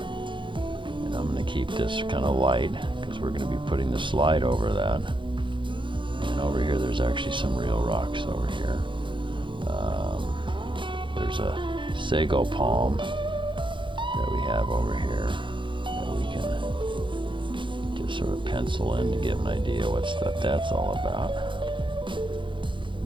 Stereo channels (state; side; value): late; left; 0.24 ms